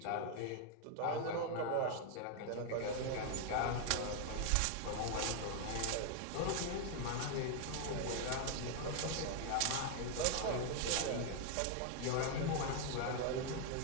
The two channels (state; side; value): different; both; correlation 0.00